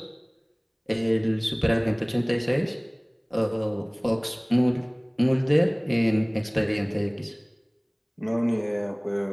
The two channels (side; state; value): both; identical; correlation 1.00